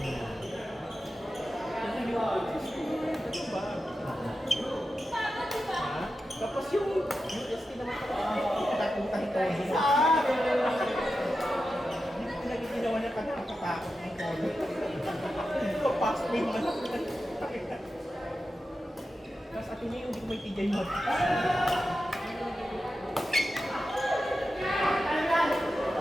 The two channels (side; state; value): both; normal; correlation 0.91